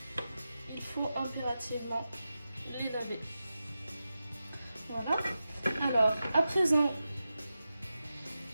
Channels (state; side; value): inverted; both; correlation -0.92